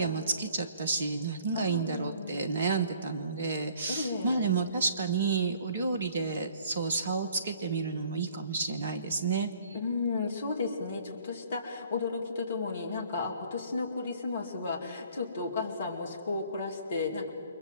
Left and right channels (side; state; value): both; inverted; correlation -0.56